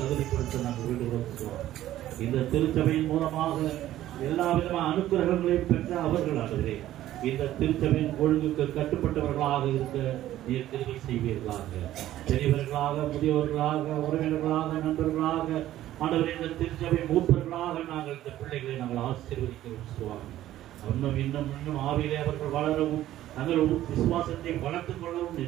நாங்கள் வேண்டுகிறோம் சுவாமி. இந்த திருச்சபையின் மூலமாக எல்லா விதமான அனுக்கிரகங்களையும் பெற்ற அவர்கள் ஆண்டவரே இந்த திருச்சபையின் ஒழுங்குக்கு கட்டுப்பட்டவர்களாக இருக்க நீர் திருப்பி செய்வீர்களாக. பெரியவர்களாக, முதியவர்களாக, உறவினர்களாக, நண்பர்களாக ஆண்டவரே இந்த திருச்சபை மூப்பர்களாக நாங்கள் இந்த பிள்ளைகளை நாங்கள் ஆசீர்வதிக்கிறோம் சுவாமி. இன்னும் ஆவியிலே அவர்கள் வளரவும் தங்கள் விசுவாசத்தை வளர்த்துக் கொள்ளவும்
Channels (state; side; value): quieter; left; 13.6 dB